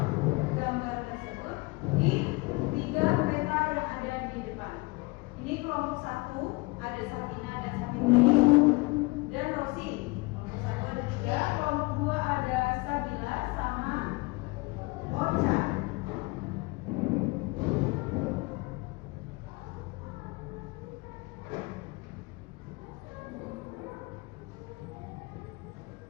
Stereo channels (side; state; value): right; quieter; 25.4 dB